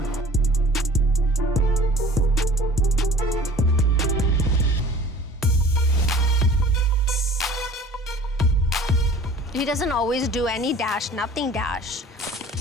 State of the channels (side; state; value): both; normal; correlation 0.46